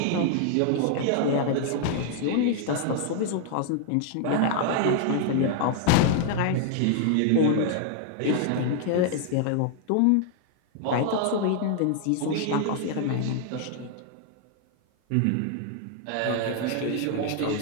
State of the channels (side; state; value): both; different; correlation 0.00